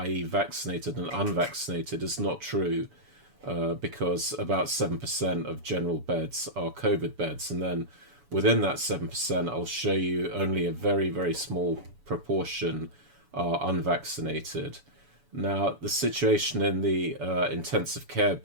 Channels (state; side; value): late; left; 7.0 ms